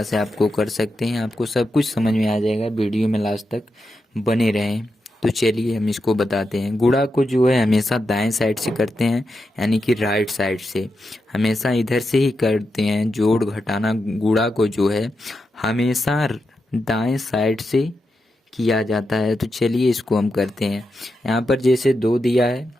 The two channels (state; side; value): normal; both; correlation 0.87